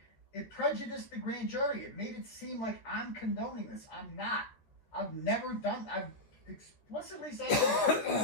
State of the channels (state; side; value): late; right; 13 ms